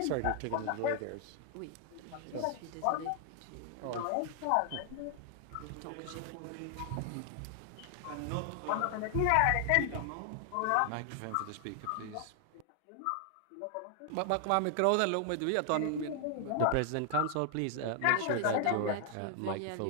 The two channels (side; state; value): both; different; correlation 0.00